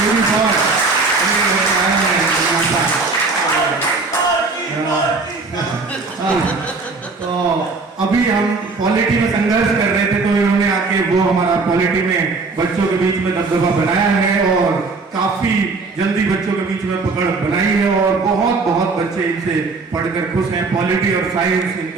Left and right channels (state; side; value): quieter; left; 4.0 dB